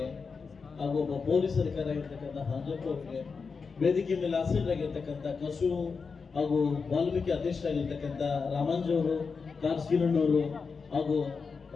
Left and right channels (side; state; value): right; quieter; 5.1 dB